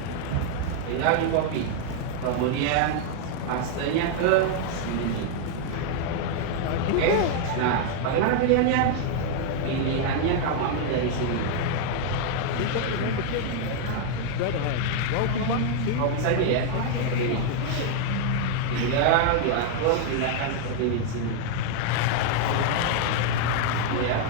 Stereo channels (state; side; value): different; both; correlation 0.00